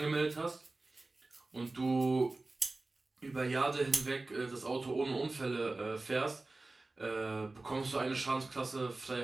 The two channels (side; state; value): left; quieter; 3.2 dB